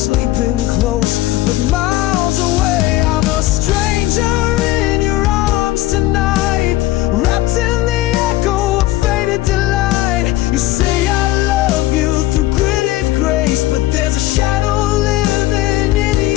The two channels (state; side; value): quieter; right; 16.3 dB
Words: close but miles away. I'm a stranger in your arms tonight, wrapped in the echo of faded delight. You say I love you through gritted grace, but there's a shadow living in